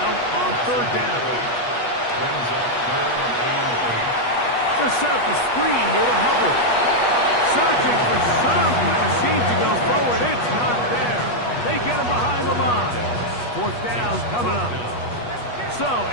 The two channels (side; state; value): right; late; 8.3 ms